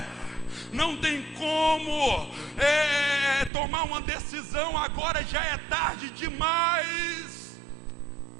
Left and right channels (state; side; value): drops out; left; at 3.5 s